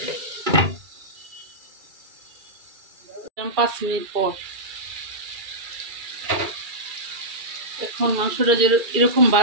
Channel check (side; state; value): left; late; 2.4 ms